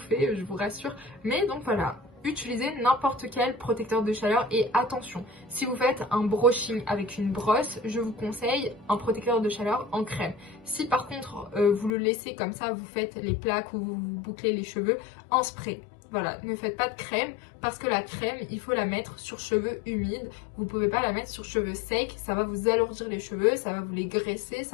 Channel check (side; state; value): right; drops out; at 11.9 s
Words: je vous rassure. Mais donc voilà, utilisez n'importe quel protecteur de chaleur et attention, si vous faites un brushing avec une brosse, je vous conseille un protecteur de chaleur en crème. Si par contre vous le laissez comme ça, vous faites les plaques ou vous bouclez les cheveux en spray. Voilà, ne faites pas de crème parce que la crème, il faut la mettre sur cheveux humides. Vous ne pouvez pas la mettre sur cheveux secs, ça va vous alourdir les cheveux, ça va vous les graisser,